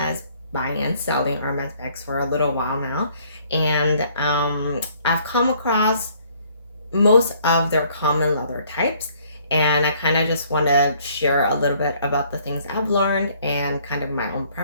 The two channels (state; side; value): inverted; both; correlation -0.62